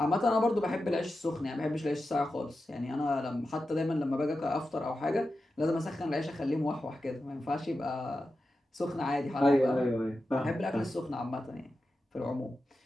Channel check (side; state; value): both; normal; correlation 0.91